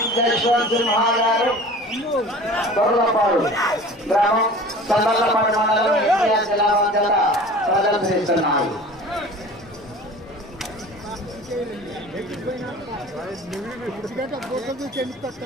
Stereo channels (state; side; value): normal; both; correlation 0.41